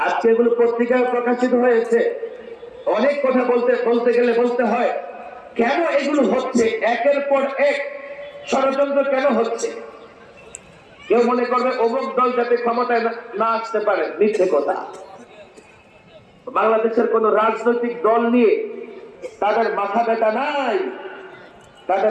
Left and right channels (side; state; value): both; identical; correlation 1.00